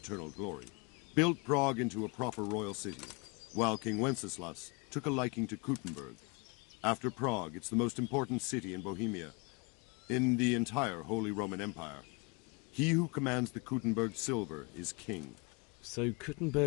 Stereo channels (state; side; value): quieter; right; 30.6 dB